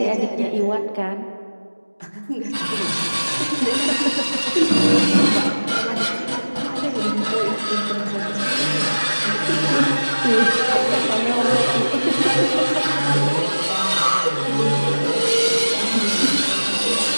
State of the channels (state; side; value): inverted; both; correlation -1.00